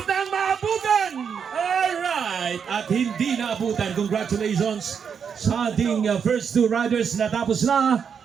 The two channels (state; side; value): quieter; left; 6.9 dB